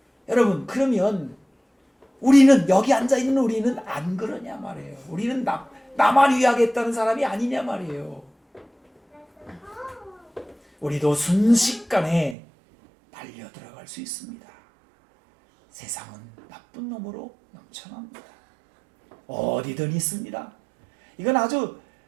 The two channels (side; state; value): left; drops out; at 12.4 s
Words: 여러분, 그러면 우리는 여기 앉아있는 우리는 안 그러냐 말이에요. 우리는 나만 위하겠다는 사람이 아니냐 말이에요. 우리도 순식간에 달려 들어갈 수 있습니다. 세상은 나쁜 놈으로 넘쳐납니다. 어디든 있습니다. 이건 아주